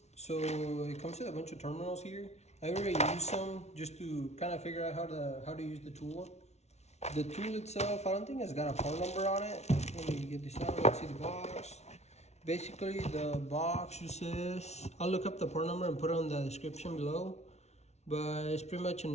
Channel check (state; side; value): late; right; 0.32 ms